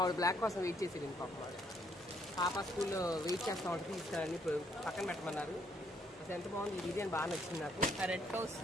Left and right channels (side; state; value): both; normal; correlation 0.69